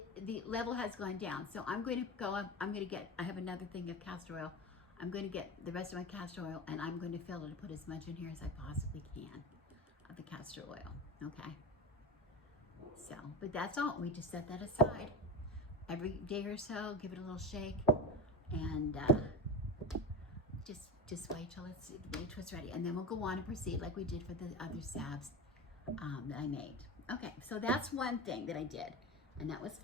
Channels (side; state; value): both; normal; correlation 0.25